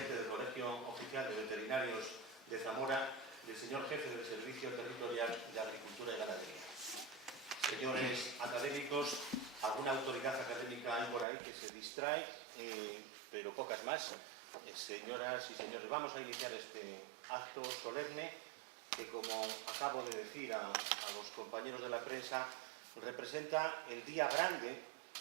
del Colegio Oficial de Veterinarios de Zamora y el señor jefe del Servicio Territorial de Agricultura y Ganadería. Señores académicos, alguna autoridad académica hay por ahí que se distrae, pero pocas más. Señoras y señores, vamos a iniciar este acto solemne que, como acabo de decir a los compañeros de la prensa, representa el día grande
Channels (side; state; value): left; drops out; at 11.2 s